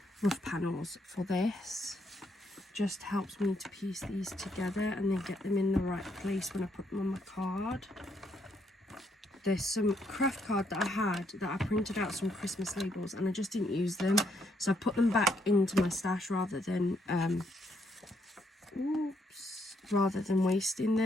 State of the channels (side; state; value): both; normal; correlation 0.74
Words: rough panels for this. Just helps me to piece these together and then get them in the right place when I put them on my card. There's some craft card that I had that I printed out some Christmas labels and I just didn't use them. So I put them back into my stash rather than wasting